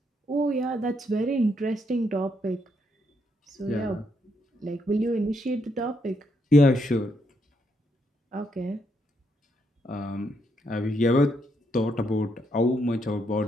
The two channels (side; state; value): both; normal; correlation 0.77